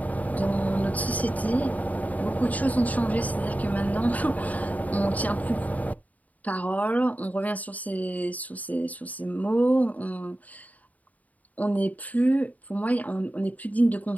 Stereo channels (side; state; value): right; late; 0.074 ms